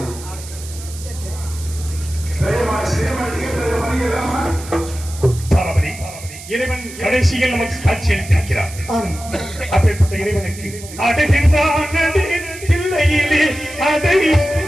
இறைவன் கடைசியில் நமக்கு காட்சி அளித்திருக்கிறார். அப்பேற்பட்ட இறைவனுக்கு அடுகின்றான் பிள்ளையிலே அதை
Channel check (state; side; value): noise; right; hiss, 15 dB below the sound